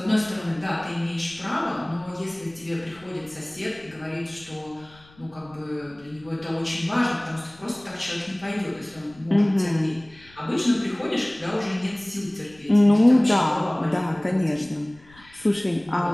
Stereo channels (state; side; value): noise; left; rumble, 26 dB below the sound